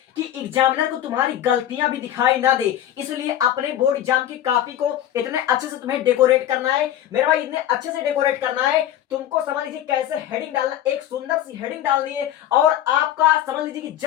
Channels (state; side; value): quieter; right; 11.7 dB